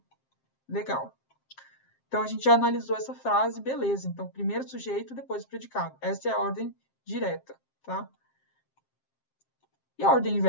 Legal. Então, a gente já analisou essa frase, beleza. Então, primeiro sujeito, depois o predicado. Essa é a ordem direta, tá? E a ordem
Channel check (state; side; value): late; right; 7.5 ms